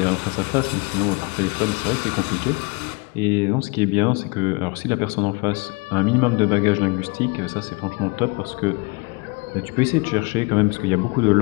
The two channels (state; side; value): quieter; right; 29.4 dB